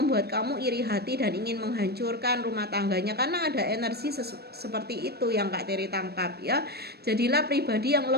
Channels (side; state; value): left; late; 0.47 ms